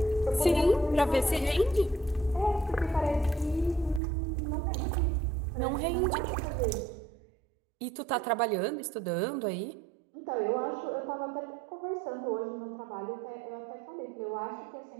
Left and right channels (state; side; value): drops out; left; at 4.0 s